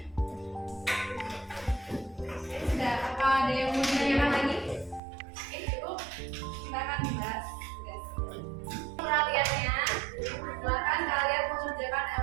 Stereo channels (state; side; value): drops out; left; at 5.0 s